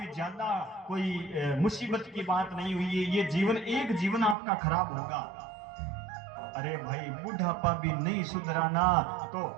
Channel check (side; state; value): left; drops out; at 4.4 s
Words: ज्यादा कोई मुसीबत की बात नहीं हुई है। ये जीवन, एक जीवन आपका खराब होगा। अरे भाई बुढ़ापा भी नहीं सुधराना तो